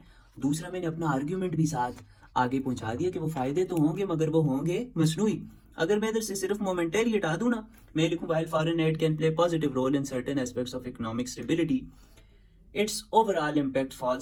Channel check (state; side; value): identical; both; correlation 1.00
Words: दूसरा मैंने अपना आर्ग्यूमेंट भी साथ आगे पहुंचा दिया कि वो फायदे तो होंगे मगर वो होंगे मसनूई। अगर मैं इधर से सिर्फ मोमेंटरी हटा दूं ना, मैं लिखूं while foreign aid can play positive role in certain aspects of economic stability, its overall impact